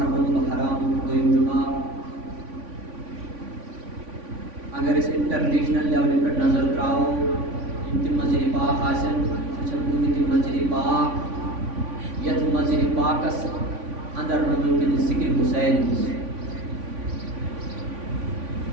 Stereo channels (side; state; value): left; late; 3.5 ms